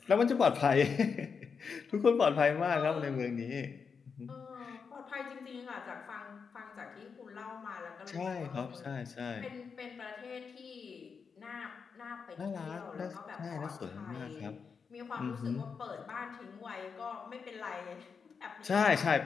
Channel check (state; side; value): quieter; right; 5.8 dB